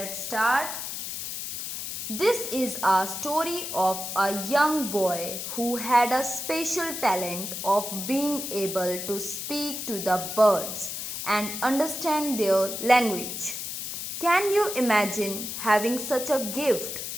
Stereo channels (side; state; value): left; noise; hiss, 6 dB below the sound